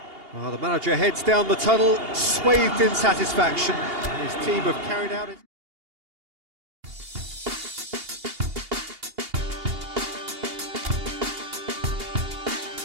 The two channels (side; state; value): left; late; 2.8 ms